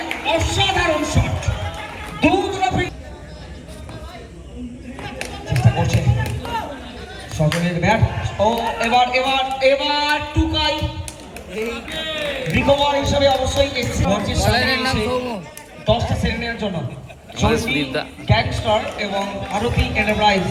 অসাধারণ শট চেষ্টা করছে সজলের ব্যাট ও এবার এবার এবার টুকাই রিকভার হিসেবে অবশ্যই এসছে টসটা সেরে নেওয়ার জন্য গ্যাংস্টার এবং ভারতী এন্টারপ্রাইজ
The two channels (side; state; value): both; identical; correlation 1.00